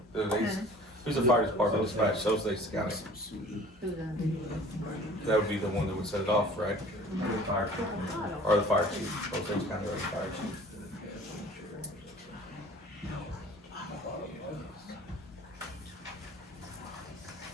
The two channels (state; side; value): normal; both; correlation 0.47